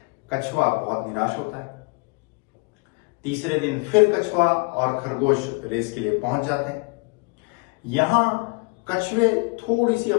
कछुआ बहुत निराश होता है। तीसरे दिन फिर कछुआ और खरगोश रेस के लिए पहुंच जाते हैं। यहां कछुए थोड़ी सी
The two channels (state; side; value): quieter; right; 31.0 dB